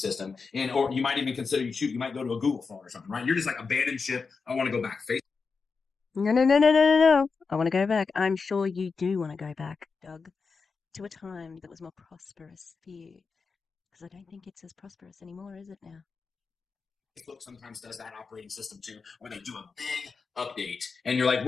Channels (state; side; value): quieter; right; 4.9 dB